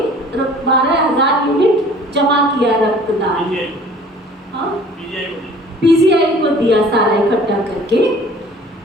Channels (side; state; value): both; normal; correlation 0.50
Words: 12,000 यूनिट जमा किया रक्तदान। पीजीआई को दिया सारा इकट्ठा करके,